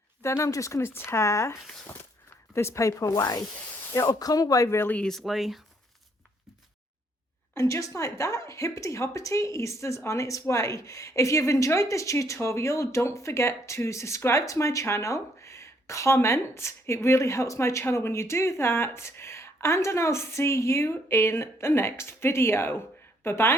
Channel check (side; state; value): both; normal; correlation 0.68